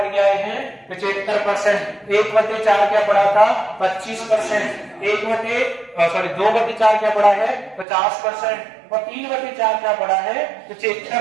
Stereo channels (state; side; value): drops out; left; at 7.9 s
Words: के आए हैं 75%। 1/4 क्या पढ़ा था 25%। 2/4 क्या पढ़ा है 50%। और 3/4 क्या पढ़ा है